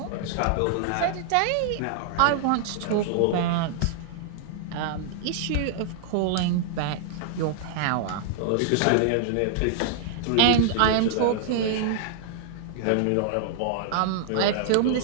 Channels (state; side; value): different; both; correlation -0.01